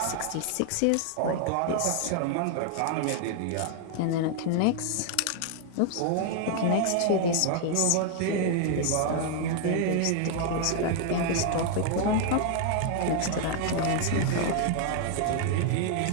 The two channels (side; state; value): both; different; correlation 0.00